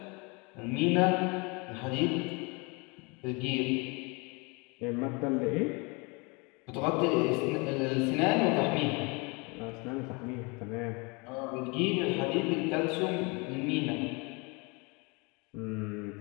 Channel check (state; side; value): quieter; right; 29.2 dB